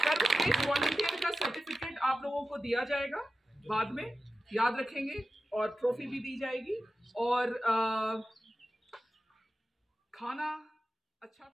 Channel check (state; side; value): normal; both; correlation 0.93